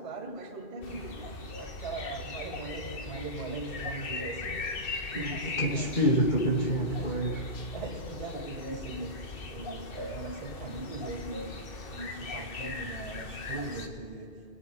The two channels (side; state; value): right; late; 2.6 ms